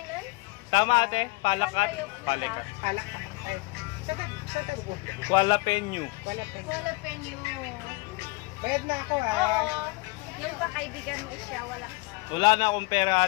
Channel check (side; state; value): right; quieter; 24.8 dB